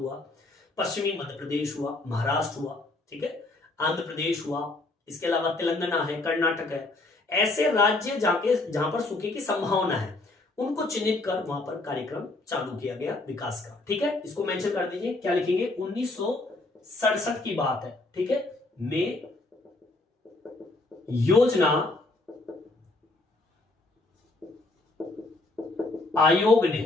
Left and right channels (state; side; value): quieter; right; 3.0 dB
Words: पश्चिमी मध्य प्रदेश हुआ, महाराष्ट्र हुआ, ठीक है, आंध्र प्रदेश हुआ, इसके अलावा तेलंगाना है, कर्नाटक है। ऐसे राज्य जहां पर सूखे की संभावना है उनको चिन्हित कर वहां पर कार्यक्रम चालू किया गया विकास का। ठीक है, इसको मेंशन कर दीजिए, क्या लिखेंगे? 1967 की बात है। ठीक है, में योजना आयोग ने,